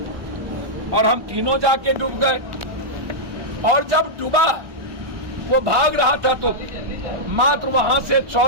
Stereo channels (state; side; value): late; left; 1.1 ms